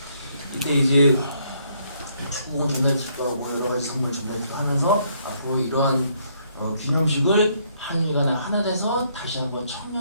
이때 이제 축구 전달식도 하고 여러 가지 선물 전달식도 하면서 앞으로 이러한 기념식을 한일간에 하나 돼서 다시 한번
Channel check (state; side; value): inverted; both; correlation -0.70